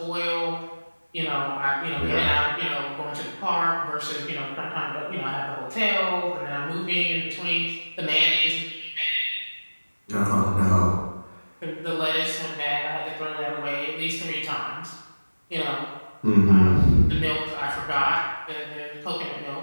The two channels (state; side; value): inverted; both; correlation -1.00